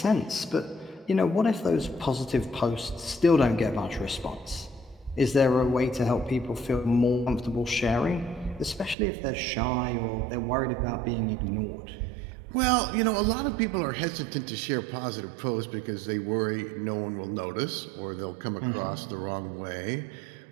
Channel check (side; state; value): left; drops out; at 9.0 s